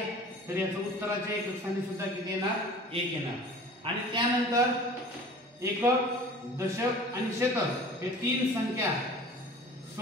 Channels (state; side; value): normal; both; correlation 0.44